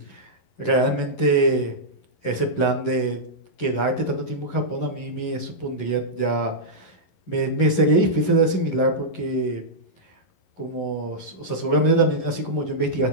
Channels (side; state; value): right; late; 11 ms